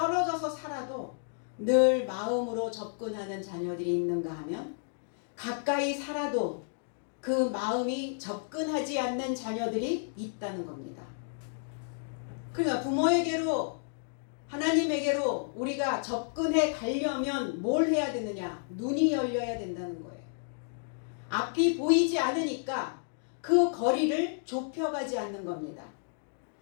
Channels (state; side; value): silent; right; digital silence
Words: 살아도 늘 마음으로 접근하는 자녀들이 있는가 하면, 가까이 살아도 그 마음이 접근하지 않는 자녀들이 있다는 겁니다. 그러니까 부모에게로, 하나님에게로 우리가 접근해 가려면 뭘 해야 되느냐? 눈이 열려야 된다는 거예요. 앞이 보이지 않으니까 그 거리를 좁혀가지 않는 겁니다.